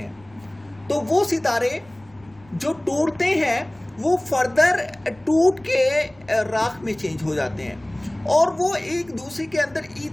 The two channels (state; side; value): noise; left; rumble, 28 dB below the sound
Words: तो वो सितारे जो टूटते हैं वो फर्दर टूट के राख में चेंज हो जाते हैं और वो एक दूसरे के अंदर